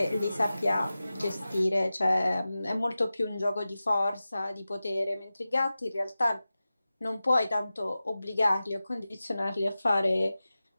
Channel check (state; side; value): inverted; both; correlation -0.95